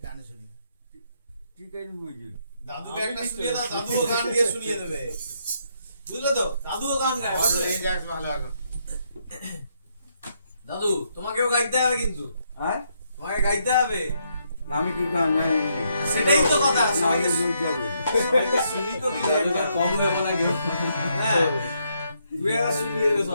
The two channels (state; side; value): inverted; both; correlation -0.75